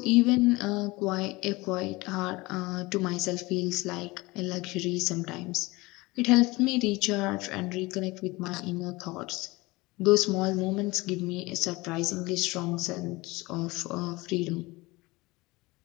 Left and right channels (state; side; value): quieter; right; 22.2 dB